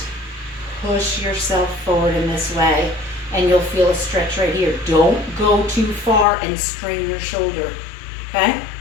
push yourself forward in this way, and you'll feel a stretch right here. Don't go too far and strain your shoulder. Okay?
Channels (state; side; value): drops out; right; at 6.2 s